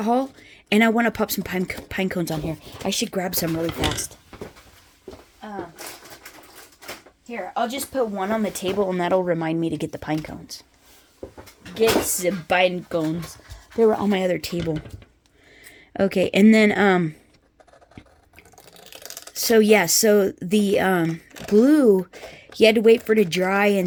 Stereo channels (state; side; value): identical; both; correlation 1.00